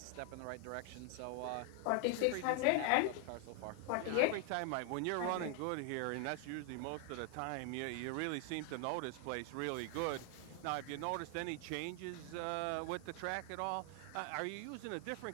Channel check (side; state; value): both; different; correlation 0.00